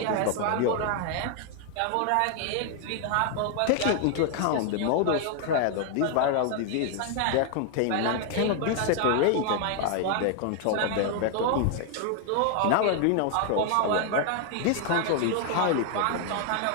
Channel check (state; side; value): different; both; correlation 0.00